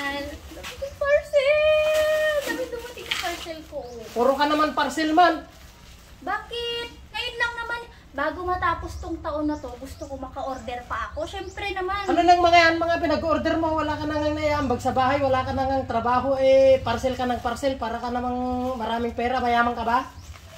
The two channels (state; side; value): identical; both; correlation 1.00